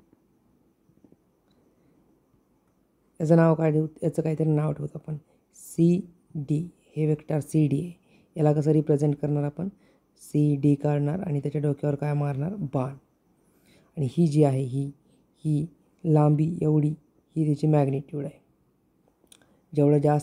याचं नाव काय देऊ, याचं काहीतरी नाव ठेवतो आपण CD. हे वेक्टर CD आहे. याला कसं रिप्रेझेंट करणार आपण, CD काढणार आणि त्याच्या डोक्यावर काय मारणार, बाण. आणि ही जी आहे ही लांबी एवढी, ही त्याची मॅग्निट्यूड आहे. जेवढं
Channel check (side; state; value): both; identical; correlation 1.00